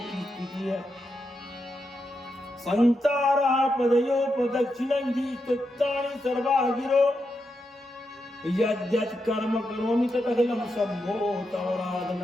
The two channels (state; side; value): normal; both; correlation 0.85